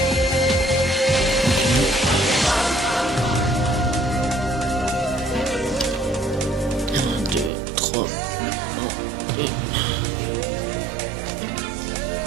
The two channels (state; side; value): drops out; left; at 7.5 s